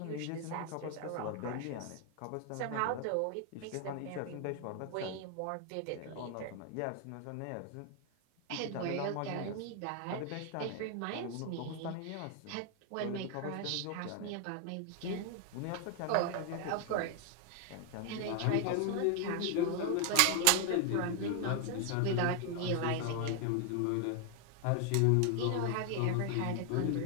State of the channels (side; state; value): both; different; correlation 0.00